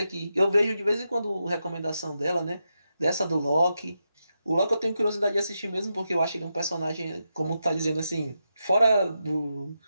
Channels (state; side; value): inverted; both; correlation -0.86